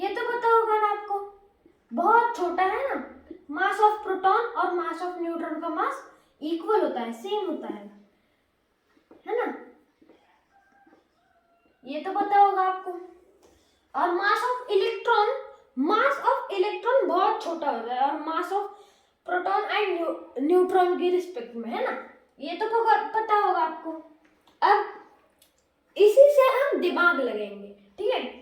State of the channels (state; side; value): identical; both; correlation 1.00